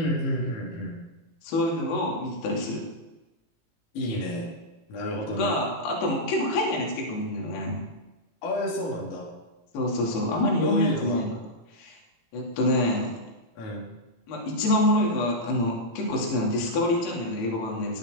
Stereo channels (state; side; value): late; right; 18 ms